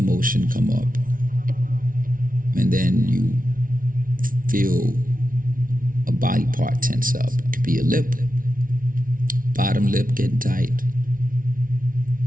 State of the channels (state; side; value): late; left; 0.40 ms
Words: come up, and then you feel a body part tense up. It could be a lip, bottom lip getting tight,